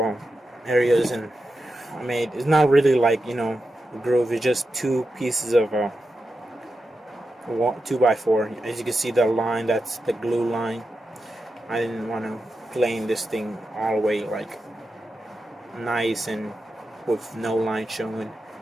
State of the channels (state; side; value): normal; both; correlation 0.89